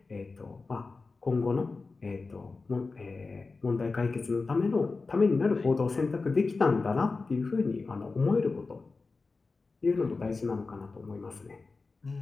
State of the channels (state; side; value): quieter; right; 4.0 dB